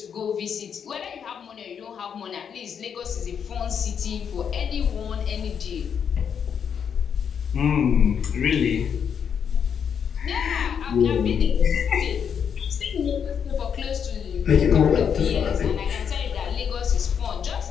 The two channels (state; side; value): quieter; right; 7.5 dB